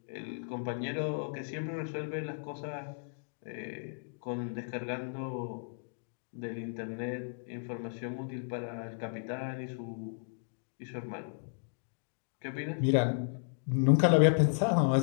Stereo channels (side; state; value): right; silent; digital silence